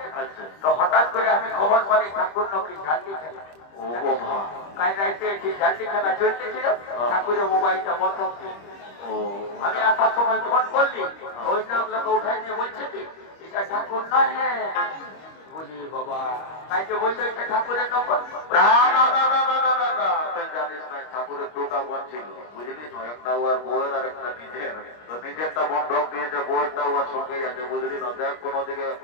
আচ্ছা, তো হঠাৎ করে আমি খবর পালি ঠাকুর নাকি ঝান্ডি খেলা। ও বাবা, কাল রাইতে ঝান্ডি খেলা চলতেছিল, ঠাকুরের মোবাইলটা বন্ধ ছিল। ও আমি আসার সময় ফোন করলি, ওই লোক উঠাই নিয়ে বলছে কি এটা ঠাকুর নয়। বলি বাবা, তাই যে বলছে এটা ঠাকুরের নম্বর। না না না না না না না না, তুই জানিস না ঠাকুরের দুটা বোন ছিল বুঝলি? একটা ওর বউয়ের আর একটা নিজের। তো নিজেরটা বন্ধক দিয়েছে, বউয়েরটা ওর সঙ্গেই আছে বুঝলি না? দেখ কোনো দিকে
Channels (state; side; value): late; right; 25 ms